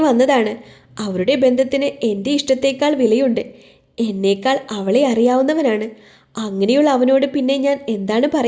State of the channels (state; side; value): identical; both; correlation 1.00